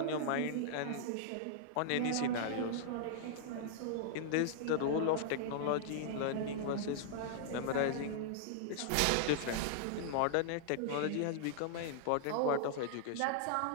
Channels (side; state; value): both; different; correlation -0.01